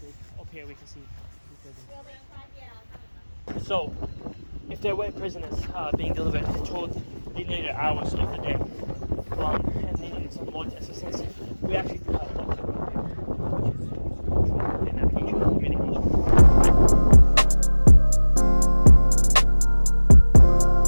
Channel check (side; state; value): both; inverted; correlation -1.00